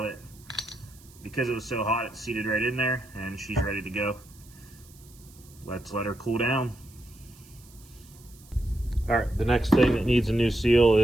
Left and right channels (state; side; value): noise; right; hiss, 25 dB below the sound